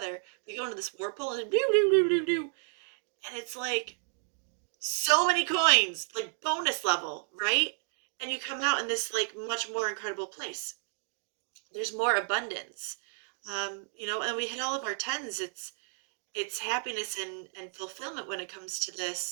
We go into this warp pool and and it's like so many coins, like bonus level, right? And you come out in this like much more incredible place. There's more abundance. And we hit all of our tens. It's happiness and fulfillment when it comes to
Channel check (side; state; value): left; silent; 56 dB below the other